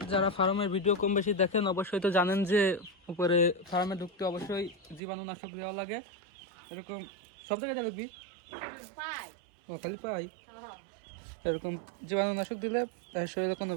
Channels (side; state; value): left; drops out; at 5.0 s